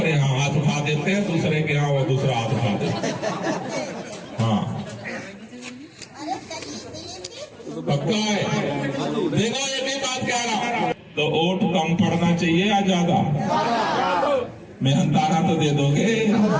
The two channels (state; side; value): identical; both; correlation 1.00